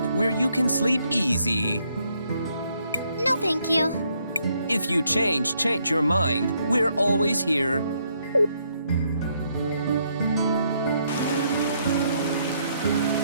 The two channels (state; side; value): inverted; both; correlation -0.73